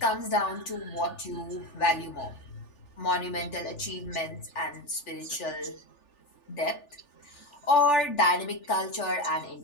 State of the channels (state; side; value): late; right; 3.4 ms